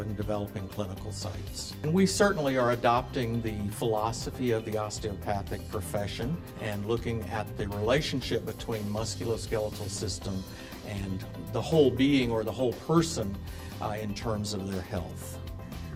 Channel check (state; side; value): identical; both; correlation 1.00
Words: in developing clinical sites. And we certainly are adopting the philosophy of the osteopathic profession and looking at the relationship between musculoskeletal system and the whole being or the whole person in terms of their health.